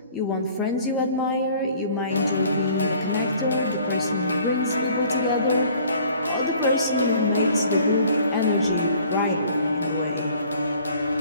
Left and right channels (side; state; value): both; inverted; correlation -0.54